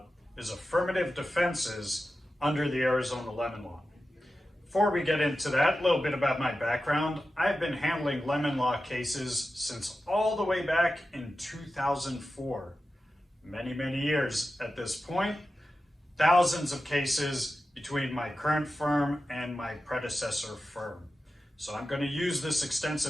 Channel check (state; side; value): normal; both; correlation 0.92